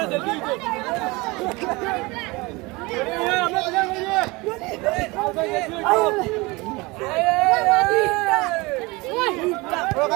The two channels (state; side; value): quieter; left; 24.1 dB